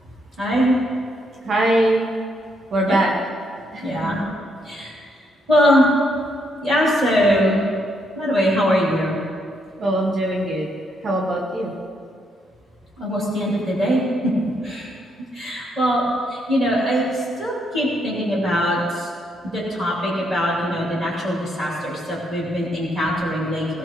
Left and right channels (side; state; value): both; normal; correlation 0.75